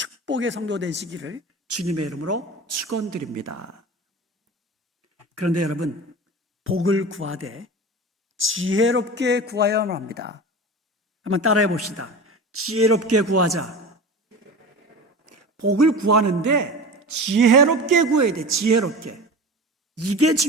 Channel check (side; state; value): both; normal; correlation 0.32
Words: 성도 되시기를 주님의 이름으로 축원드립니다. 그런데 여러분, 복을 구하되 지혜롭게 구하여야 합니다. 한번 따라해 봅시다. 지혜롭게 구하자. 복을 구하는데 지혜롭게 구해야 돼. 지혜롭게. 이게